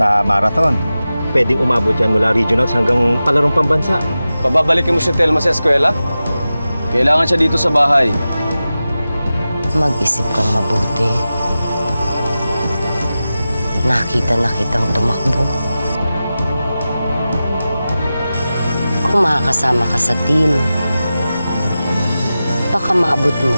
marathon. Pwedeng umabot yan mula regionals hanggang palarong pambansa. Pababalikin mo si Telma sa eskwela? Kailangan siya dito sa bahay. Mag-isip kang mabuti. Nakita na kitang tumakbo. Kung makakasama ka sa team, baka maabot mo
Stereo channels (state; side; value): inverted; both; correlation -0.94